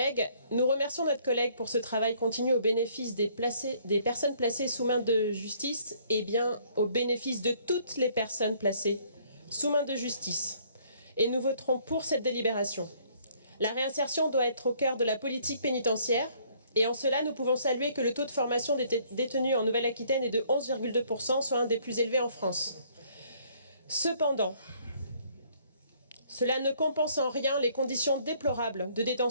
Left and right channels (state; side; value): inverted; both; correlation -0.62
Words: nous remercions notre collègue pour ce travail continu au bénéfice des personnes placées sous main de justice et bien au bénéfice de toutes les personnes placées sous main de justice. Et nous voterons pour cette délibération. La réinsertion doit être au cœur de la politique pénitentiaire et en cela, nous pouvons saluer que le taux de formation des détenus en Nouvelle-Aquitaine est de 11,2%, soit un des plus élevés en France. Cependant, cela ne compense en rien les conditions déplorables de